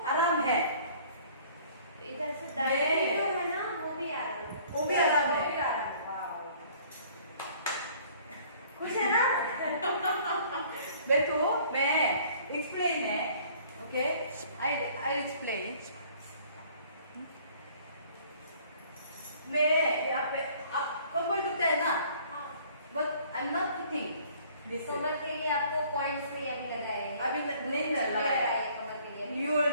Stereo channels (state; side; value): inverted; both; correlation -0.55